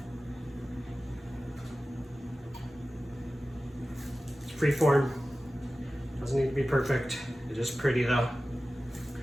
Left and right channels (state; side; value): normal; both; correlation 0.95